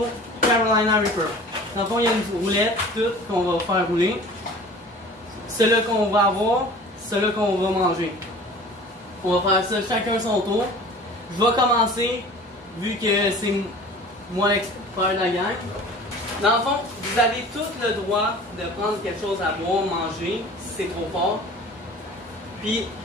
Carolina Reaper. Dans le fond, il y a une roulette, toute, qu'on va faire rouler. Ceux-là qu'on va avoir, ceux-là qu'on va manger. On va faire ça chacun son tour. Je vais commencer, vu que c'est moi l'expert de la gang. Dans le fond, vous avez tout le droit de prendre quelque chose à boire, manger, si c'est trop fort. Puis,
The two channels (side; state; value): both; normal; correlation 0.43